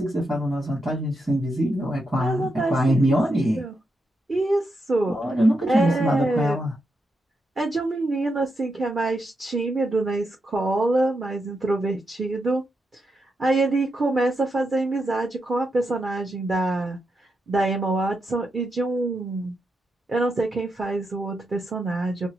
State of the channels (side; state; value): both; normal; correlation 0.84